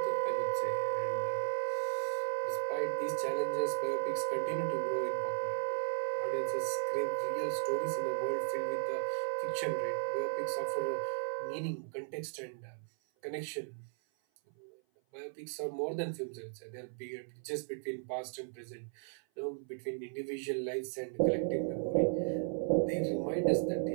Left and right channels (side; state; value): left; silent; 54 dB below the other